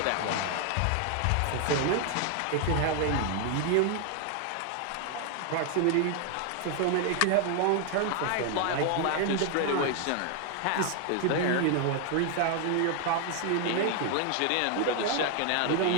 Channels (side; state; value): both; different; correlation 0.00